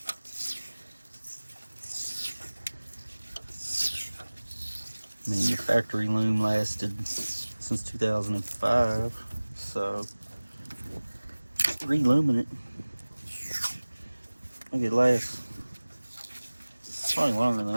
I mean, the factory loom lasted since 2005, so re-looming it, I think it lasts probably longer than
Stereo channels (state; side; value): inverted; both; correlation -1.00